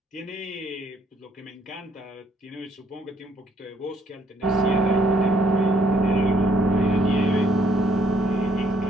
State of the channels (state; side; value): normal; both; correlation 0.67